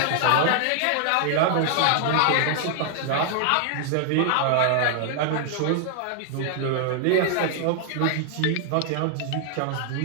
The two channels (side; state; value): both; different; correlation 0.00